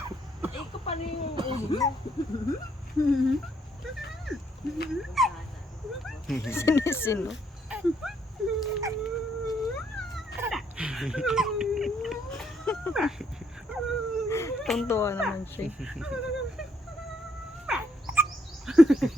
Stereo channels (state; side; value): normal; both; correlation 0.72